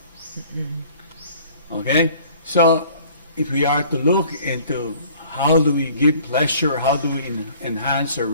Okay? So, if we are to look into how do we give pleasure, how do we enhance our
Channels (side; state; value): both; inverted; correlation -0.53